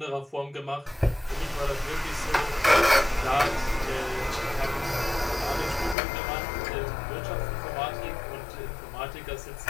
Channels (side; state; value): right; drops out; at 6.0 s